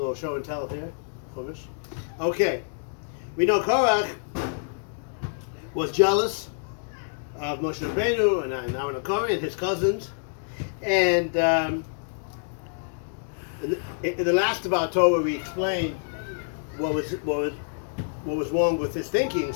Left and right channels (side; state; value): right; silent; digital silence